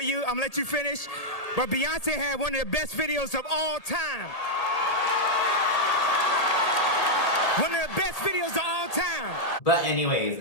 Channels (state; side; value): late; right; 1.8 ms